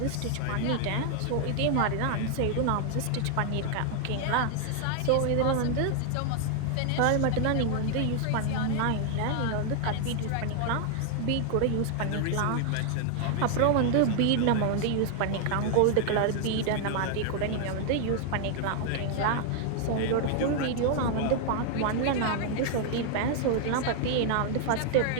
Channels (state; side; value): different; both; correlation 0.00